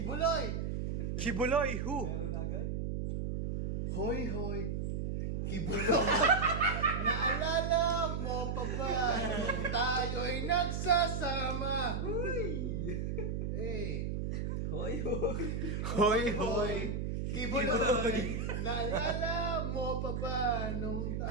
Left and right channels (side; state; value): right; noise; hum, 1 dB below the sound